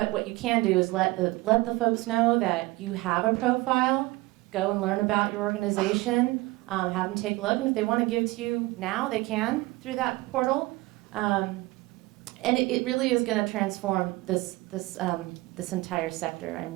what you can do is let the folks know that you have a profile, go and learn about your organization, have them take a look, and if they want to give to you now, they can through that portal. And it really is going to transform this entire sector. I'm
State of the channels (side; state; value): left; quieter; 21.2 dB